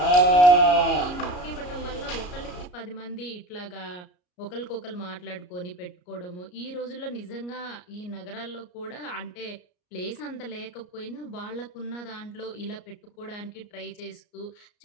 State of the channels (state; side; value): late; right; 33 ms